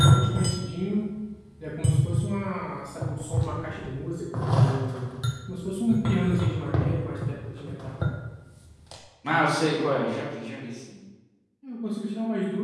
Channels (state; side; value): identical; both; correlation 1.00